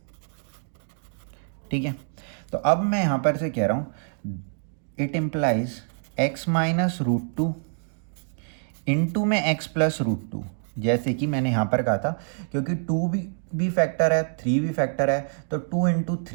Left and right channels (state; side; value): silent; left; 61 dB below the other